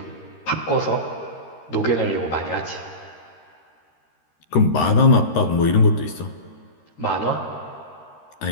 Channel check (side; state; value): right; late; 13 ms